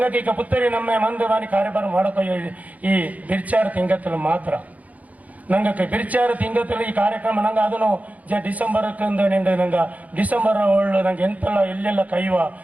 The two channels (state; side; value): late; left; 0.073 ms